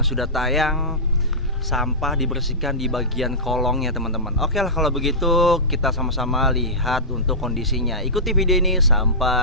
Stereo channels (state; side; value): normal; both; correlation -0.16